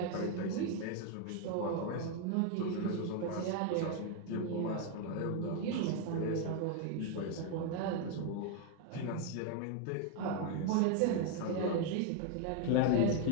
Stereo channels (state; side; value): different; both; correlation 0.01